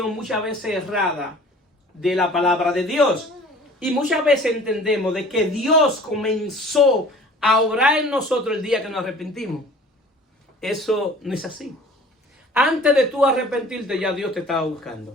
muchas veces errada de la palabra de Dios. Y muchas veces entendemos de que Dios comenzó a obrar en nosotros el día que nos arrepentimos. Eso no es así. Antes de tú arrepentirte, ya Dios te estaba buscando.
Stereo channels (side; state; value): both; normal; correlation 0.47